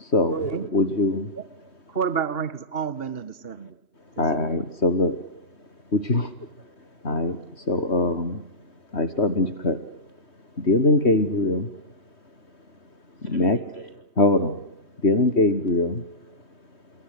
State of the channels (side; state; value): right; late; 3.2 ms